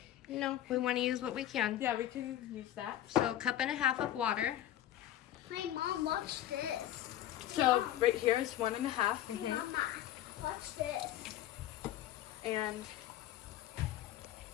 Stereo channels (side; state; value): right; quieter; 12.6 dB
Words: No, we want to use what we can. yeah, we can use that. So 1.5 cups of water. Hey, Mom, watch this. So, right here is 1.5. Mm-hmm. Mama, watch this. And